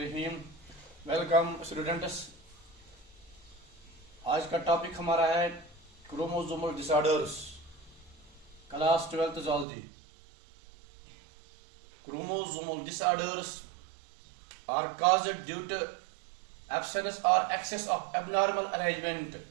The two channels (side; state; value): left; drops out; at 9.7 s